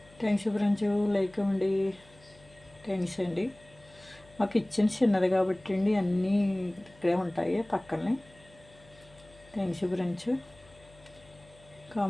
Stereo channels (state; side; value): noise; left; hum, 26 dB below the sound